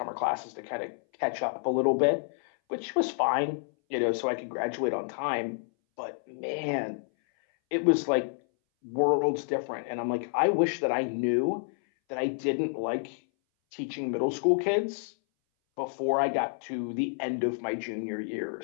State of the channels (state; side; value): silent; right; 58 dB below the other